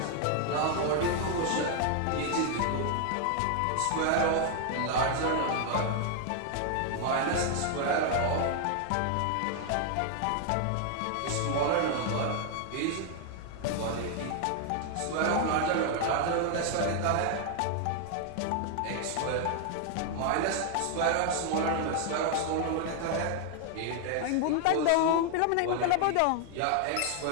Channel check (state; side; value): different; both; correlation 0.00